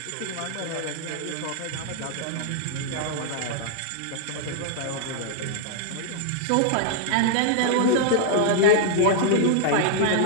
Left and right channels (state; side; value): different; both; correlation -0.01